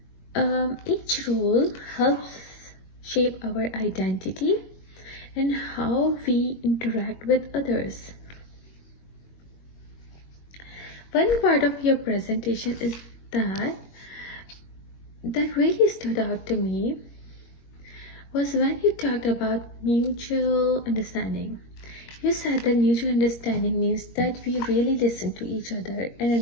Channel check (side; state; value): right; late; 21 ms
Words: Each role helps shape our identity and how we interact with others. One part of your presentation is that really stood out to me was when you talked about mutual understanding. You said that mutual understanding means that we really listen to each other and